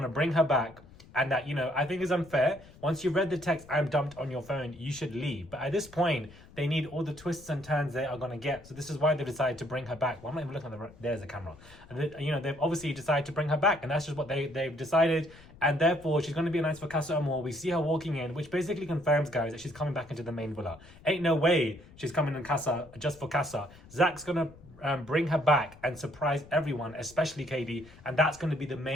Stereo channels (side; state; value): left; noise; rumble, 22 dB below the sound